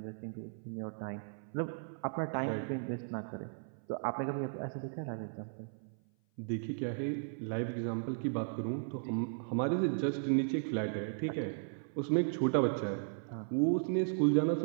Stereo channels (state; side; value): silent; left; 54 dB below the other